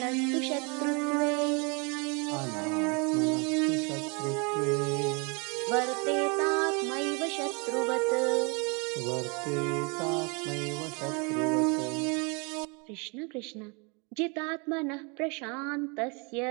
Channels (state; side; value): quieter; left; 32.0 dB